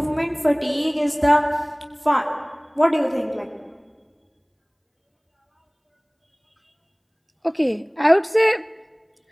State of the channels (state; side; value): identical; both; correlation 1.00